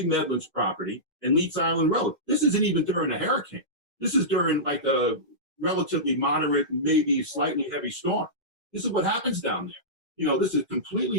Medlin's property and Leeds Island Road. This isn't even during a hurricane. This is during like a relatively moderate, maybe slightly heavy storm. This is what happens down there. This is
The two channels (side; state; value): both; normal; correlation -0.16